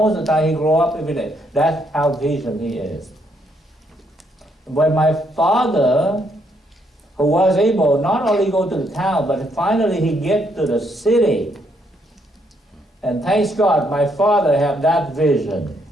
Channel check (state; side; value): normal; both; correlation 0.73